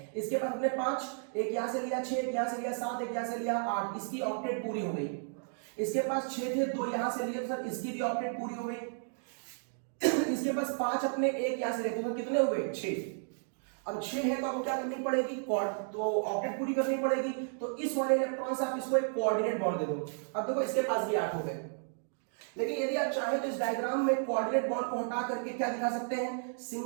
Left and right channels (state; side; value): silent; left; digital silence